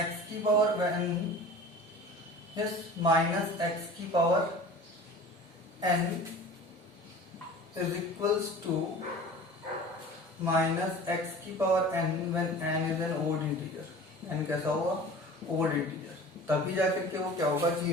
की पावर n माइनस x की power n is equals to minus x की power n when n is an odd integer. n कैसा होगा? Odd integer. तभी जाकर के वो क्या होगा?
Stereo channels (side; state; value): both; normal; correlation 0.40